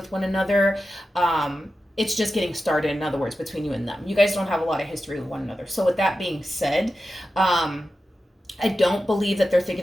one another. It's just getting started, in other words, between you and them. You guys don't have a lot of history with one another. So with that being said, I don't believe that they're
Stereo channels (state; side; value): normal; both; correlation 0.92